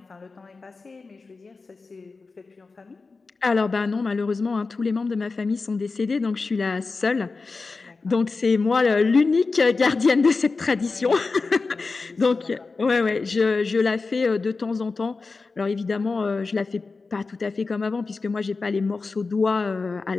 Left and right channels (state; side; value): quieter; right; 4.1 dB